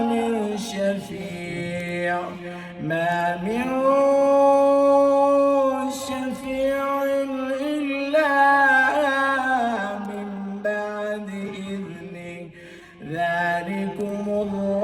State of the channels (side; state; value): both; identical; correlation 1.00